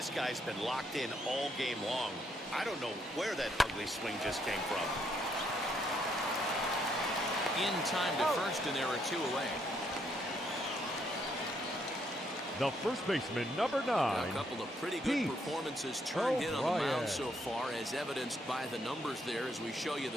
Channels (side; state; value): both; normal; correlation 0.73